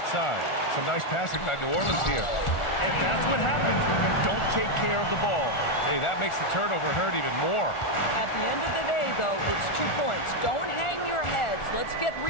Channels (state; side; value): late; right; 1.4 ms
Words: Some nice passing by New Orleans here. And that's what happens when you don't take care of the ball. Hey, that makes the turnover hurt even more. At the end of the day, though, it's 2 points. Don't hang your heads. Let's get